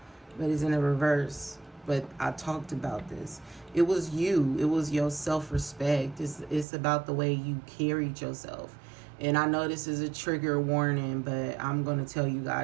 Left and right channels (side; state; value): left; drops out; at 6.7 s